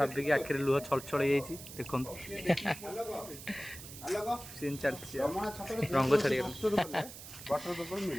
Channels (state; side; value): noise; right; hiss, 13 dB below the sound